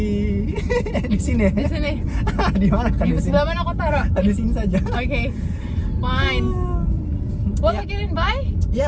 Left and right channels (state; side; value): identical; both; correlation 1.00